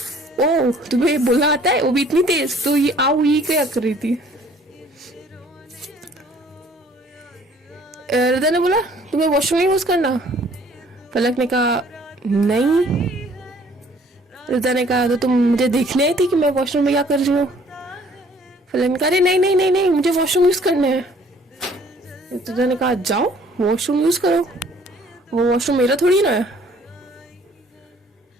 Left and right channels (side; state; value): both; normal; correlation 0.57